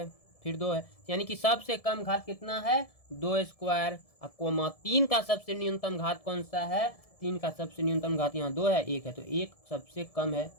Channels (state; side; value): late; right; 1.7 ms